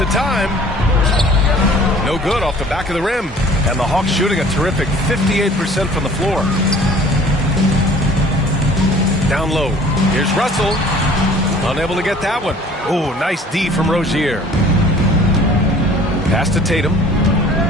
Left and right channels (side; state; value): both; normal; correlation 0.50